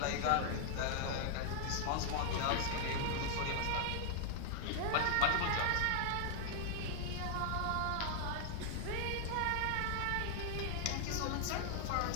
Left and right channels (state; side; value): different; both; correlation 0.00